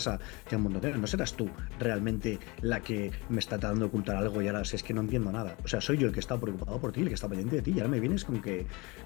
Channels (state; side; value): quieter; right; 25.9 dB